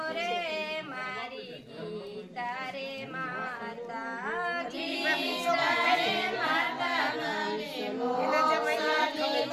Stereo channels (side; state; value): both; identical; correlation 1.00